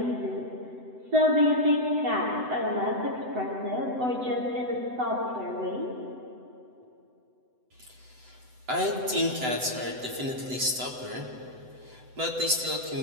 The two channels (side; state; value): left; late; 7.9 ms